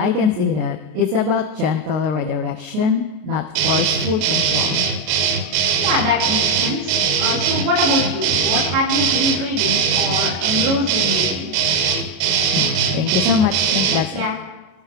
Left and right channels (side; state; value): left; late; 33 ms